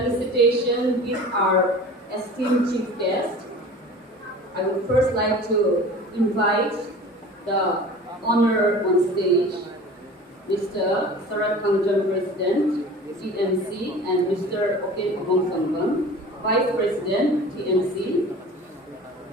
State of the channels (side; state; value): both; normal; correlation 0.40